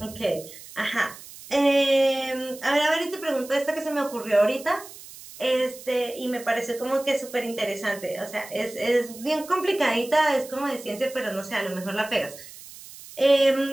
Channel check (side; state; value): right; noise; hiss, 17 dB below the sound